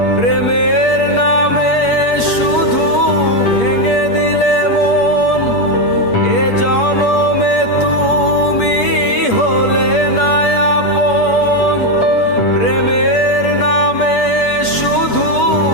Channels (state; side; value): late; right; 8.4 ms